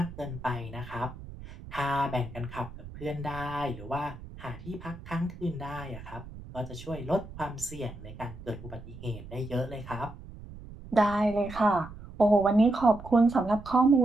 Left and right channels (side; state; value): right; noise; rumble, 15 dB below the sound